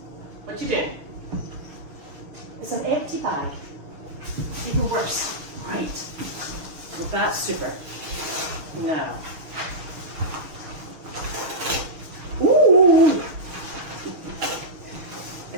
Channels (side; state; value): left; late; 6.5 ms